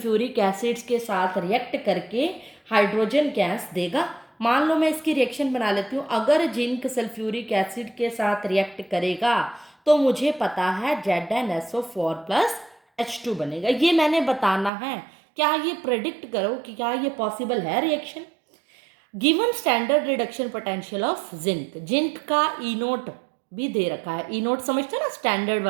एसिड्स के साथ रिएक्ट करके हाइड्रोजन गैस देगा। मान लो मैं इसकी रिएक्शन बना लेती हूँ, अगर जिंक सल्फ्यूरिक एसिड के साथ रिएक्ट करेगा तो मुझे पता है ZnSO4 प्लस H2 बनेगा। ये मैंने बताना है, क्या ये प्रेडिक्ट करो कि क्या ये पॉसिबल है reaction. Given standard reduction potential of zinc, zinc का E0 भी दे रखा है। E0 समझते हैं ना, स्टैंडर्ड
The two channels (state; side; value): drops out; left; at 14.7 s